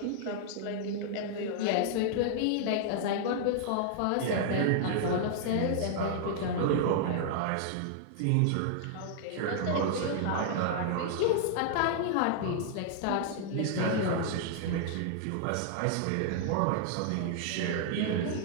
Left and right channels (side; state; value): both; different; correlation -0.01